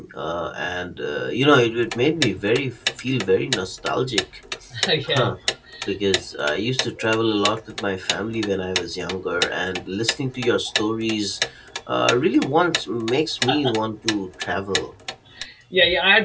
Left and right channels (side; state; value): both; identical; correlation 1.00